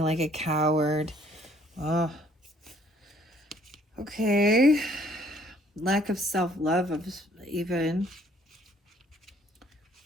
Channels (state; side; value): normal; both; correlation 0.61